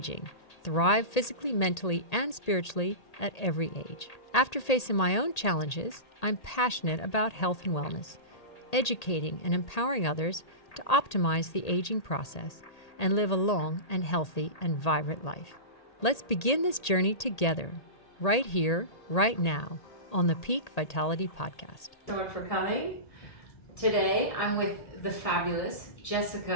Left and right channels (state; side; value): late; right; 1.8 ms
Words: thrive physically, mentally, and spiritually at every age. After facing my own challenges, I'm passionate about health and wellness, educating and empowering others to optimize the aging process and live a long and healthy and vibrant life. Let's begin this journey together, right here, right now, on the Peak Vitality Podcast. So much for coming. Today, I'm with the fabulous